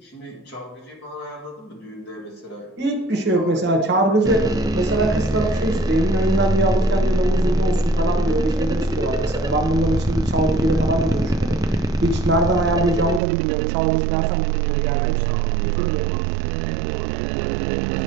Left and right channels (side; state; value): left; drops out; at 13.2 s